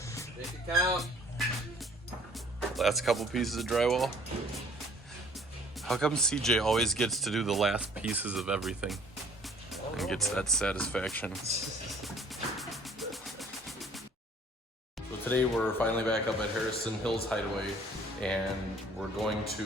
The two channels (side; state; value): both; normal; correlation 0.55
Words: Make it count. Last couple pieces of drywall. How come CJ always gets to do the last pieces of everything and gets that satisfaction? So today we're finally back up at Harrison Hills Hideaway, and we